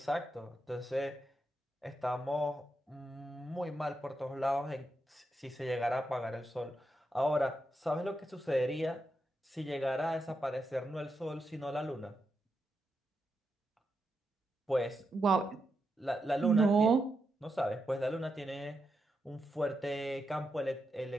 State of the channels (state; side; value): normal; both; correlation 0.85